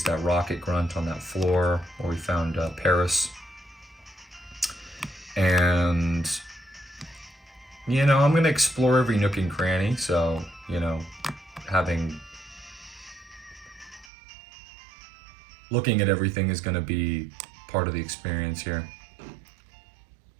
that rocket grunt on that floor, where we found Paris. And, you know, I'm going to explore every nook and cranny. So, you know, looking at everything is going to be part of the experience here.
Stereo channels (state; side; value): drops out; left; at 14.1 s